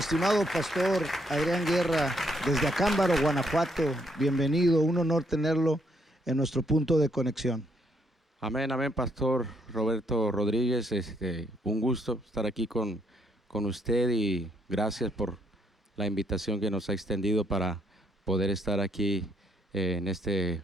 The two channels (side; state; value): both; normal; correlation 0.72